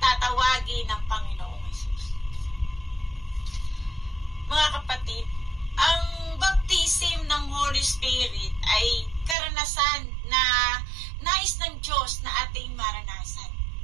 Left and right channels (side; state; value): left; drops out; at 9.3 s